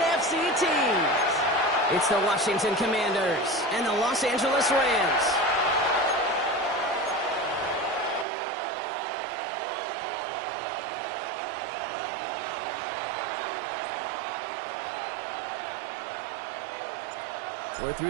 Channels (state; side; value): drops out; left; at 8.2 s